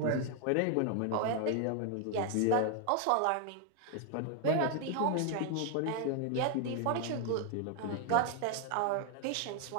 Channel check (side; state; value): both; different; correlation 0.01